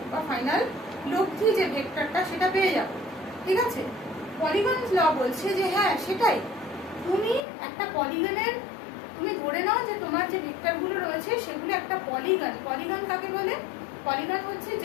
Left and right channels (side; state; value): right; drops out; at 7.5 s